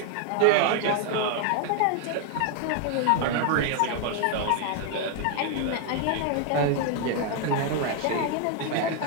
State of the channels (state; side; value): different; both; correlation 0.00